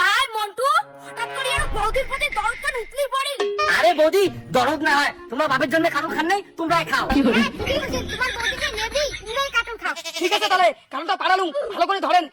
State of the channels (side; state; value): both; identical; correlation 1.00